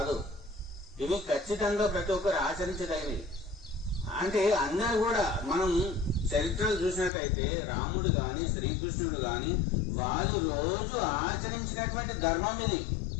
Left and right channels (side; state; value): right; drops out; at 7.1 s